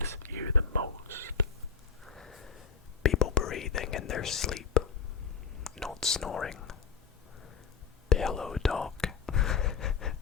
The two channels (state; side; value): quieter; right; 6.1 dB